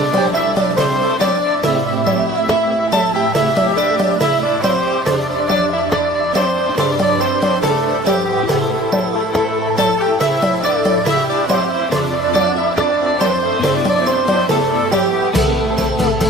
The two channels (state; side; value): normal; both; correlation 0.54